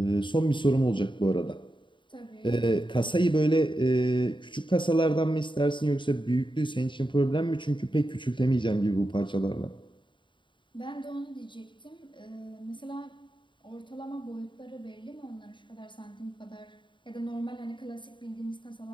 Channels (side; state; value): right; late; 0.23 ms